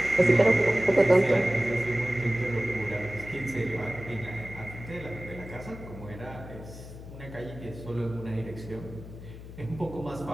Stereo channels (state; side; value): noise; left; hum, 14 dB below the sound